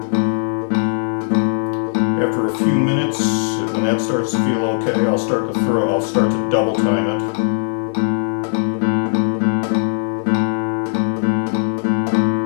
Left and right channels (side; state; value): right; silent; 62 dB below the other